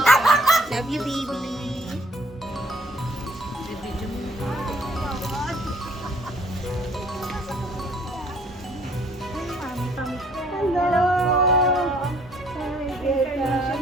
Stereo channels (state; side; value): normal; both; correlation 0.61